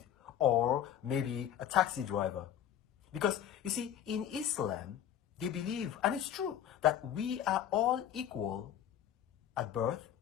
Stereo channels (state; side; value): quieter; right; 10.3 dB